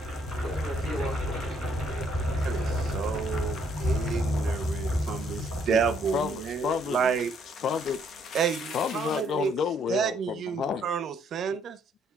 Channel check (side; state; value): both; normal; correlation 0.67